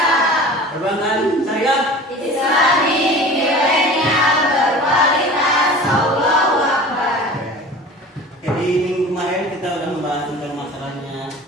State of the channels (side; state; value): both; normal; correlation 0.39